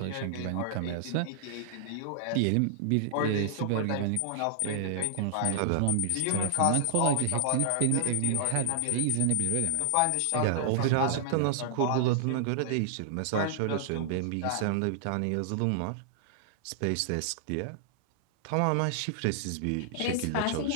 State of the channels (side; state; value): both; different; correlation -0.01